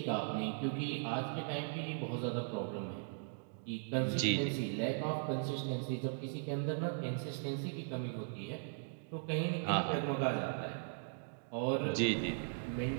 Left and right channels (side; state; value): left; silent; digital silence